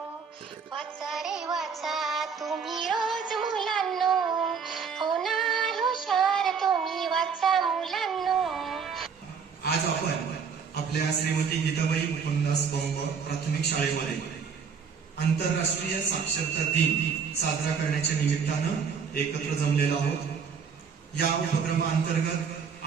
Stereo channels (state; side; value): quieter; left; 6.2 dB